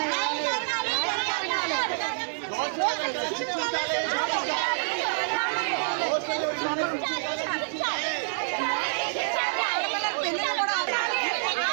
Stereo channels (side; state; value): left; silent; digital silence